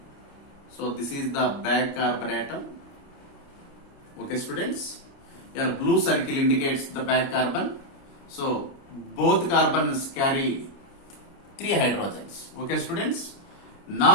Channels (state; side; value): late; right; 29 ms